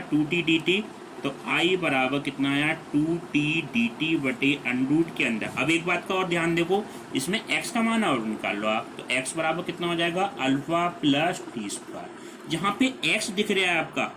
2t dt, तो i बराबर कितना आया 2t dt बटे अंडर रूट के अंदर। अब एक बात का और ध्यान देखो, इसमें x का मान और निकाल लो आप, तो x बराबर कितना हो जाएगा अल्फ़ा प्लस टी स्क्वायर। जहाँ पे x दिख रहा है आपका,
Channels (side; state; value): both; identical; correlation 1.00